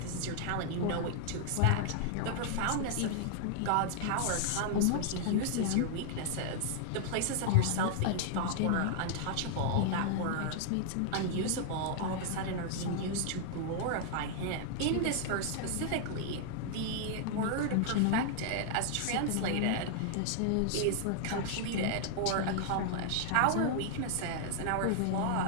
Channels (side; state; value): both; different; correlation 0.00